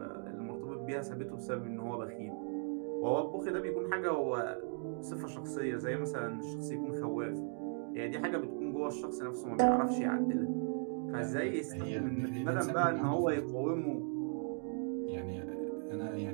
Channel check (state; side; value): silent; left; 53 dB below the other